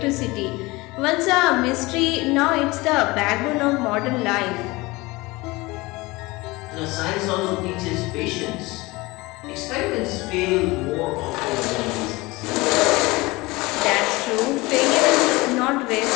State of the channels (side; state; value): right; quieter; 22.4 dB